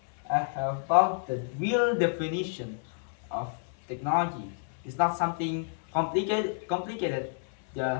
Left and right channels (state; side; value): silent; right; 58 dB below the other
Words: found the real definition of technology. It's not something complicated,